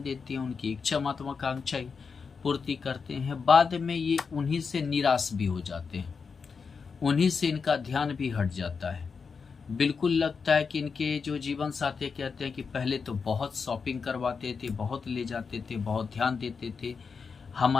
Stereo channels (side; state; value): right; quieter; 5.4 dB